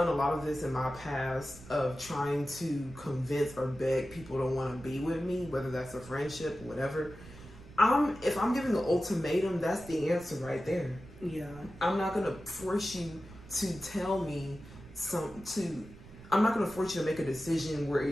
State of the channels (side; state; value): right; noise; rumble, 18 dB below the sound